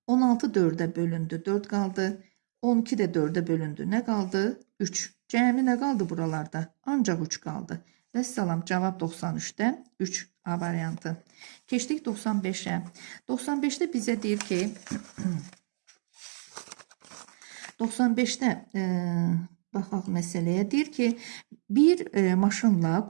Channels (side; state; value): left; silent; digital silence